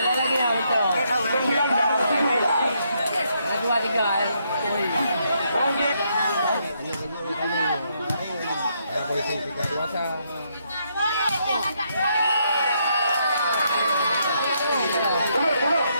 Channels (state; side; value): inverted; both; correlation -0.75